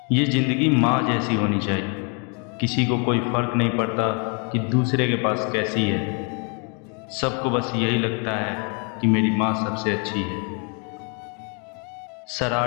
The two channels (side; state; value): right; quieter; 37.0 dB